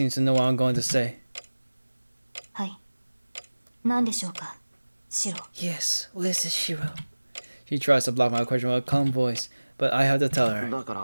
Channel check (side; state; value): both; inverted; correlation -1.00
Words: to know what I'm going to say. はい。何でしょうか、シロ。 Yes, what is this, Shiro? She tries to block my question with a calm voice, but I have to tell her. だか